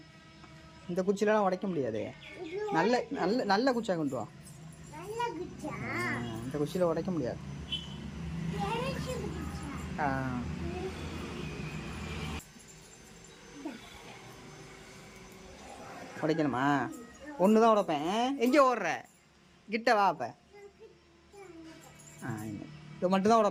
இந்த குச்சிலாம் உடைக்க முடியாது. நல்ல நல்ல நல்ல குச்சியாக கொண்டு வா. இந்த குச்சியில் உடைக்க முடியாது. உடைக்கணுமா? ஒன்று தான் உடைப்பேன். எங்கே ஓடுற? கிட்ட வா. அப்போ இது மட்டும் தான்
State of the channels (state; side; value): identical; both; correlation 1.00